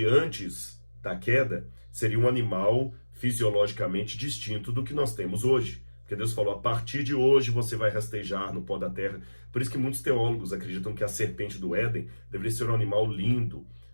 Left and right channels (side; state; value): both; inverted; correlation -1.00